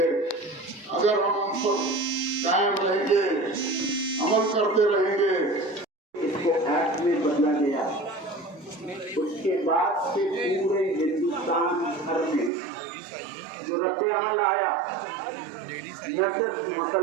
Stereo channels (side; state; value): left; drops out; at 12.5 s